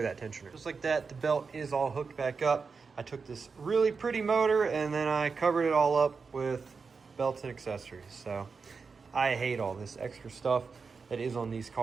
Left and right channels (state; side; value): quieter; left; 5.0 dB